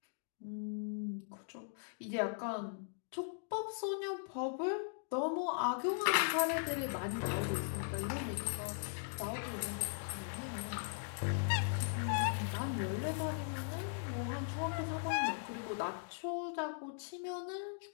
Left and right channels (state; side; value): silent; right; digital silence